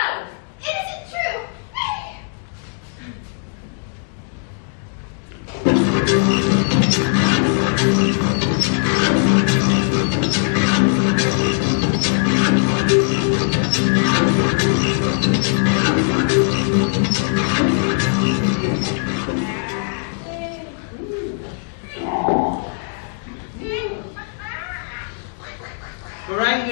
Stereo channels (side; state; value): right; silent; 58 dB below the other